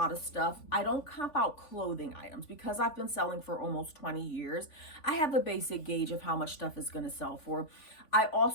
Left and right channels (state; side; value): late; right; 3.5 ms